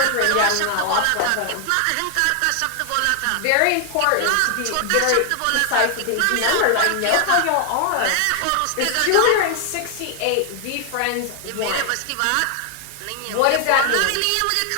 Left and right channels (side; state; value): both; different; correlation 0.00